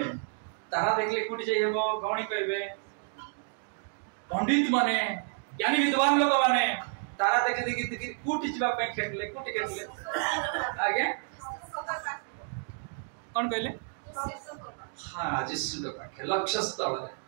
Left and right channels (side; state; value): left; silent; 57 dB below the other